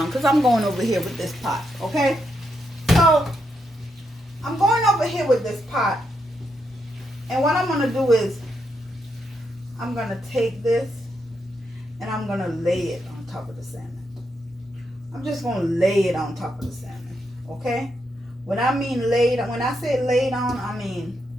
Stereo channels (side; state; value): both; normal; correlation 0.81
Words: because I'm going over here with this pot. Okay? So, I'm going over here with this pot. And what I'm going to do is, I'm going to take this and I'm going to lay it on top of the salmon. I'm just going to lay it on top of the salmon, okay? When I say laid on, I mean